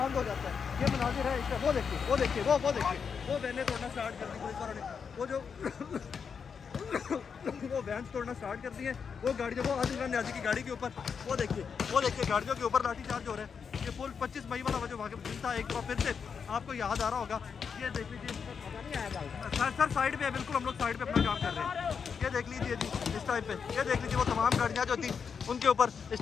हो जाता है। ये मनाजिर है इसका, वो देखिए वो वैने तोड़ना स्टार्ट कर दी पुलिस वालों ने, वो जो वो वैन तोड़ना स्टार्ट कर दिए, वो गाड़ियों को आदिल इमरान न्याजी की गाड़ी के ऊपर वो देखिए गाड़ियों के ऊपर लाठीचार्ज हो रहे हैं। ये पुल 25 मई वाला जो वहाँ दिन था, एक बार फिर से आपको याद आ रहा होगा। ये देख लीजिए सर साइड पे है, बिल्कुल हम लोग साइड पे अपना काम कर रहे हैं। ये देख लीजिए जी इस टाइम पे, ये देख लीजिए वो तमाम गाड़ियाँ जो थी उनके ऊपर इस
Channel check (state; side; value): quieter; right; 6.3 dB